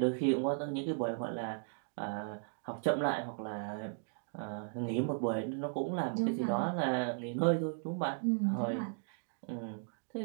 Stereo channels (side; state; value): left; silent; digital silence